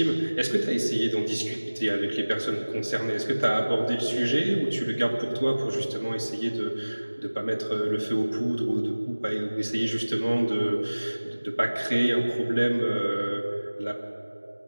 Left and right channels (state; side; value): inverted; both; correlation -1.00